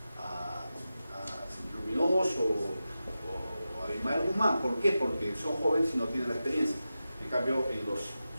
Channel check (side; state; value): both; inverted; correlation -0.92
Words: Luminoso o a Abimael Guzmán. ¿Por qué? Porque son jóvenes y no tienen la experiencia. En cambio, en los